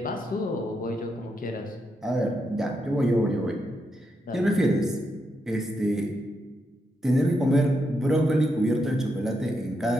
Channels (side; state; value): both; normal; correlation 0.82